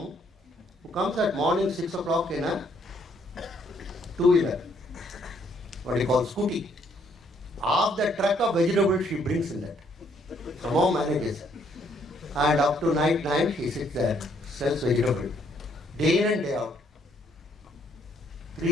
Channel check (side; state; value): both; normal; correlation 0.68